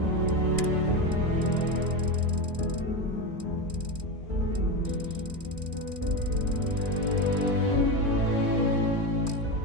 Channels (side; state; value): left; late; 2.4 ms